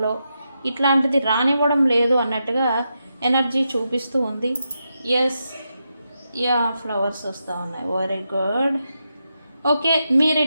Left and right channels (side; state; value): both; inverted; correlation -0.86